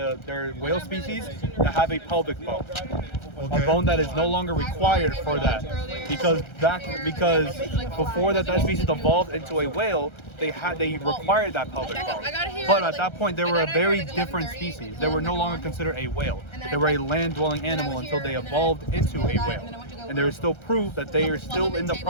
there are whale species that have a pelvic bone, a bone that is no longer required for that, because before that species evolved into a whale, they required that pelvic bone. But at that point, they were a very different species. They were no longer considered a whale. They were a land-dwelling animal until they evolved into a whale. And there is still proof that they are still in the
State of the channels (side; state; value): right; late; 1.3 ms